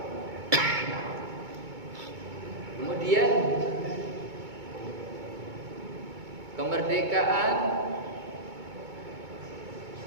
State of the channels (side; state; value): left; late; 2.2 ms